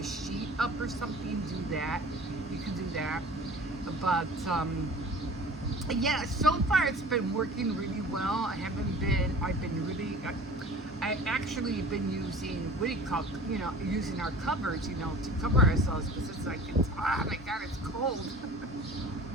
sheet up or something, do that. You can do that. But yeah, so far it's been working really well. I actually been using, using our covers, to cover ourselves, because it's like, oh my God, it's cold.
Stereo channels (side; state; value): both; normal; correlation 0.43